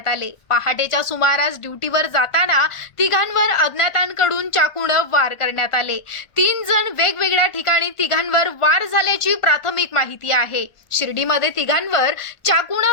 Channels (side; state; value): right; late; 1.5 ms